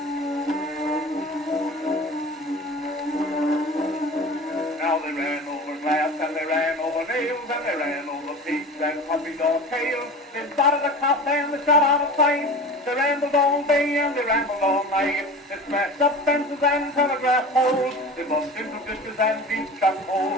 Now they ran over glass, and they ran over nails, and they ran over pigs and puppies or tails. They spotted a cop and they shot out of sight. They rambled all day and they rambled all night. They smashed up fences and telegraph poles. They bumped into ditches and deep shut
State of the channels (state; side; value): normal; both; correlation 0.35